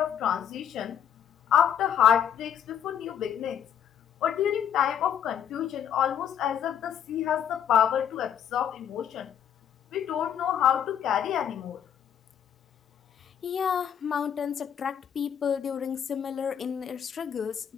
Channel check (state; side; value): quieter; right; 9.0 dB